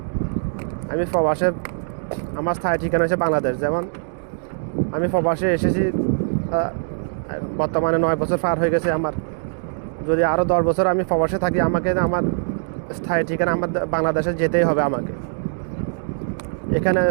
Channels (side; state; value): left; silent; digital silence